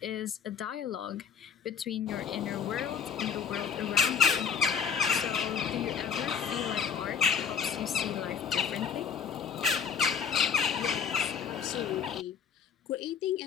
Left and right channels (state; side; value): quieter; right; 7.2 dB